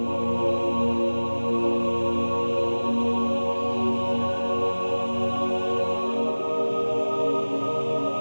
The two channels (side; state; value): both; inverted; correlation -1.00